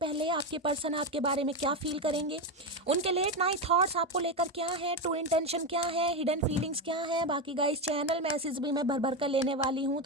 आपके पर्सन आपके बारे में क्या फील करेंगे, उनके लेट नाइट थॉट्स आपको लेकर क्या है, ट्रू इंटेंशन क्या है, हिडन फीलिंग्स क्या है। बाकी गाइस चैनल मैसेज भी मैं भर भर कर लेने वाली हूँ,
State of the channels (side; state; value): both; normal; correlation 0.13